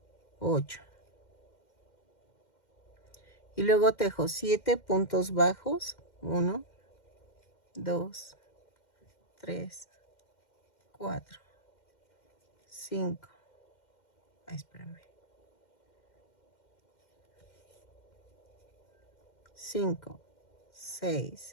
8. Y luego tejo 7 puntos bajos. 1, 2, 3, 4, 5. Espérame. 5,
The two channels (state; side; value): late; right; 2.1 ms